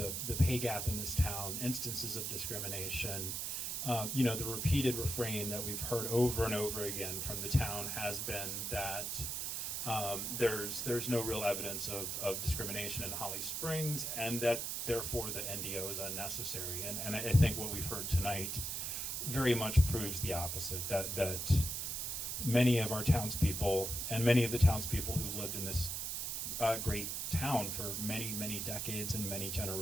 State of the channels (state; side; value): noise; right; hiss, 2 dB below the sound